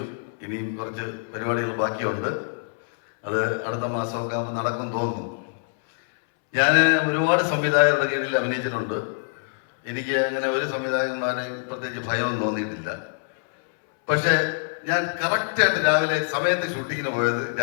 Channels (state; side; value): silent; right; 62 dB below the other